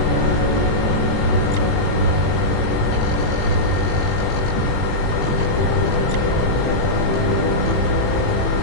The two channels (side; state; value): right; late; 18 ms